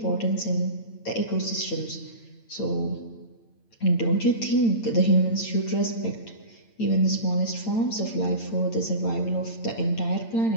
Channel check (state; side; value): late; right; 8.9 ms